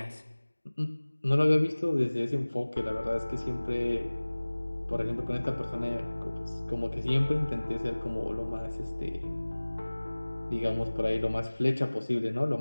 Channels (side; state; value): both; inverted; correlation -1.00